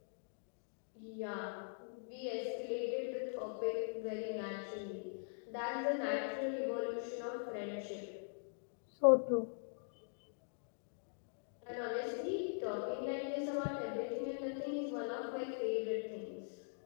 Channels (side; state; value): right; silent; digital silence